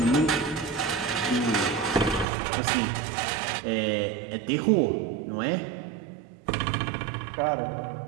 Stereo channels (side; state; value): left; drops out; at 2.2 s